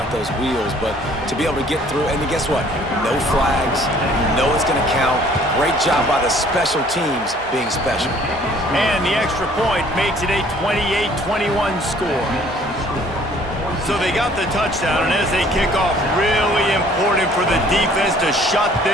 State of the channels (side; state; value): both; normal; correlation 0.57